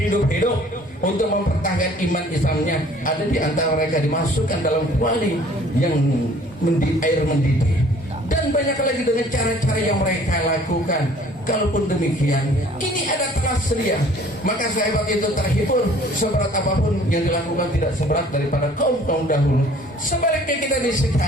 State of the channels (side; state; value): both; normal; correlation 0.54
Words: untuk mempertahankan iman Islamnya. Ada di antara mereka dimasukkan dalam kuali yang air mendidih. Dan banyak lagi dengan cara-cara yang mereka lakukan. Kalaupun demikian, ini ada telah sedia, maka sahabat itu terhibur. Seberat apapun yang dilakukan tidak seberat daripada kaum-kaum dahulu. Sebaliknya kita di